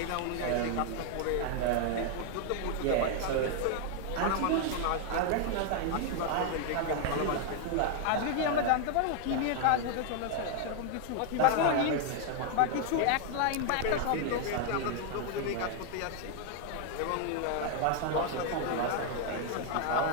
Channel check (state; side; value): different; both; correlation 0.00